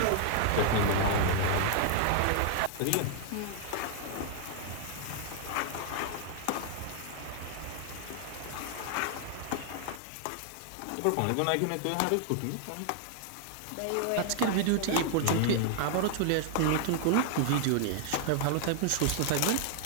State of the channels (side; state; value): both; different; correlation 0.00